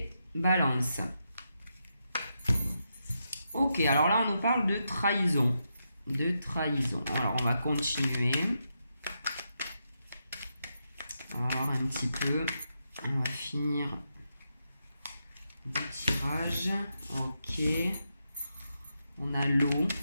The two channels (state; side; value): inverted; both; correlation -0.84